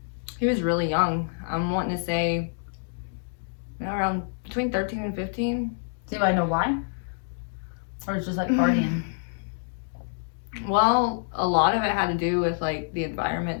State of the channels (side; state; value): right; silent; digital silence